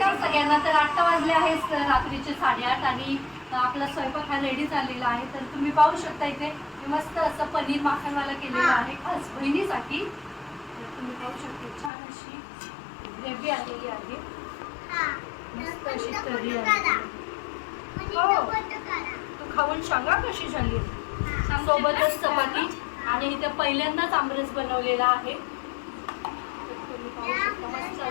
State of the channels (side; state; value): right; drops out; at 11.9 s